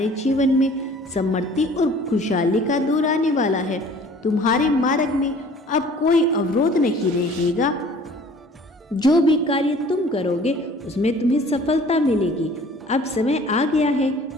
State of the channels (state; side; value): normal; both; correlation 0.50